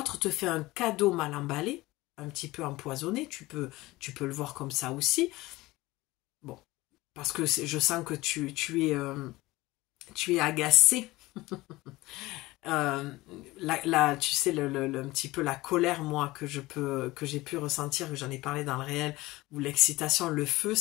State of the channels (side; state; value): right; quieter; 19.6 dB